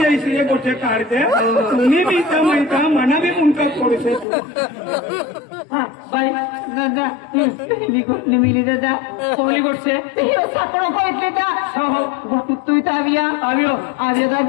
गोष्ट काढते तुम्ही बी इथं माहिता मना बी मुंका पडू बाई दादा निमिली दादा कोहली गोष्ट सापडा पळितले तू इथं आव्या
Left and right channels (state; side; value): drops out; right; at 4.2 s